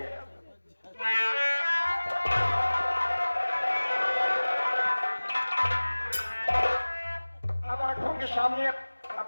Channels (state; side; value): inverted; both; correlation -1.00